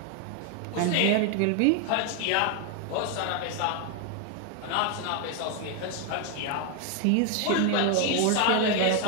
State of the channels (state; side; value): different; both; correlation 0.01